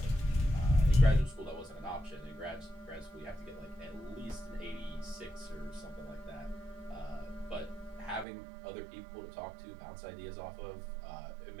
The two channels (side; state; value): left; drops out; at 8.2 s